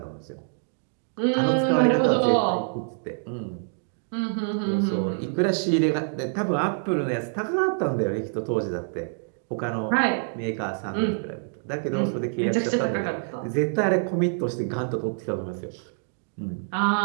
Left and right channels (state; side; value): silent; left; digital silence